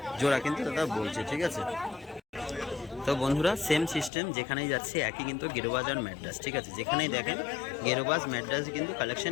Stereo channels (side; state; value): right; drops out; at 4.1 s